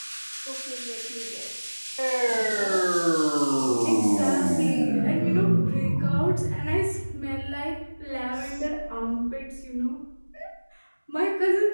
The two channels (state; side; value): inverted; both; correlation -1.00